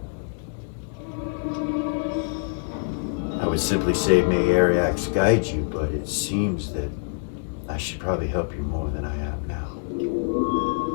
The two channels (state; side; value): silent; right; digital silence